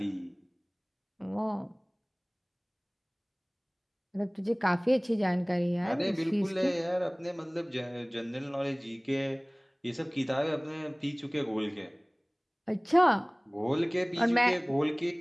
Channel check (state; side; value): identical; both; correlation 1.00